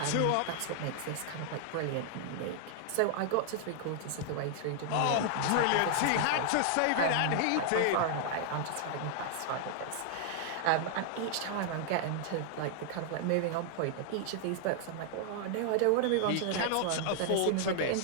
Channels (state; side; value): different; both; correlation 0.00